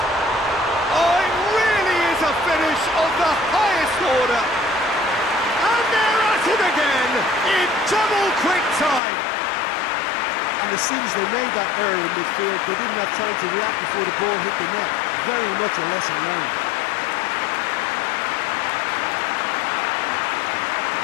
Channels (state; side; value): drops out; right; at 9.0 s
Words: Oh, it really is a finish of the highest order. And they're at it again in double quick time. And as soon as they made that error in midfield, they didn't have time to react before the ball hit the net. Very much a lesson learned.